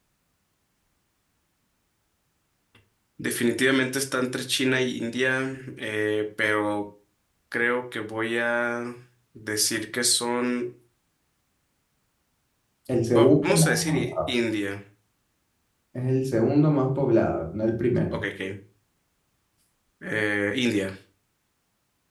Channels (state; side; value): identical; both; correlation 1.00